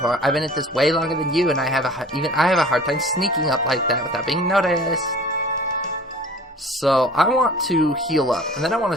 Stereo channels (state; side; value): normal; both; correlation 0.46